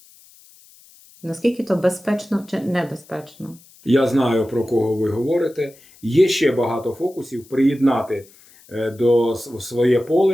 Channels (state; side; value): noise; left; hiss, 26 dB below the sound